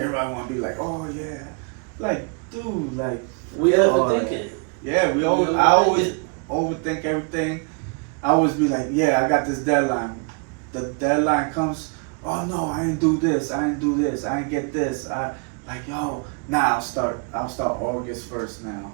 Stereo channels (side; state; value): left; quieter; 35.7 dB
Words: want to be like, oh yeah, like dude, like we overthink it. Yeah, I always overthink everything. I always be like, yeah, I got this deadline. The deadline comes. Oh no, I didn't do this. I didn't do this. I didn't get this. I'll start August 1st now. You know